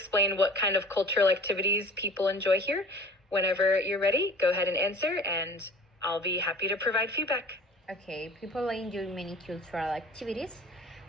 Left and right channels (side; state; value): both; normal; correlation 0.44